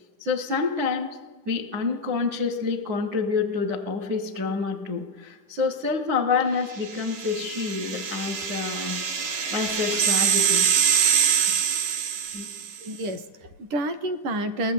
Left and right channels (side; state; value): left; late; 10 ms